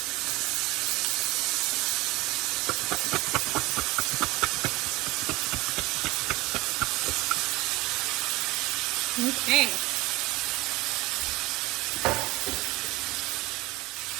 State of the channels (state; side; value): quieter; left; 20.7 dB